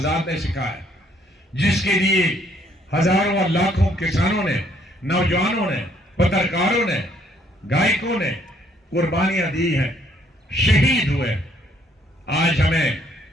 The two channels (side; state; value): both; normal; correlation 0.66